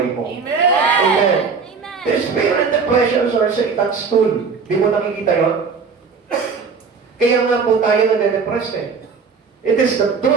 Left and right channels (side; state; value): left; quieter; 5.3 dB